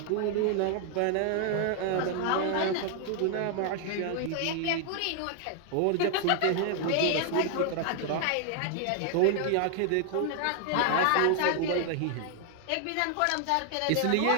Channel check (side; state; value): both; different; correlation 0.00